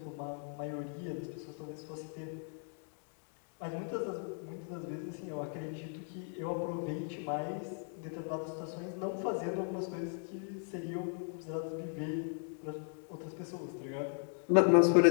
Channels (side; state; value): right; silent; 53 dB below the other